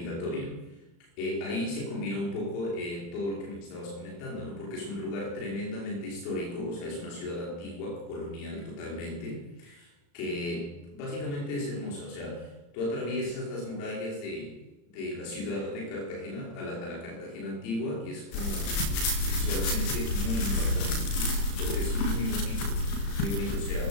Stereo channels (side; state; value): right; late; 35 ms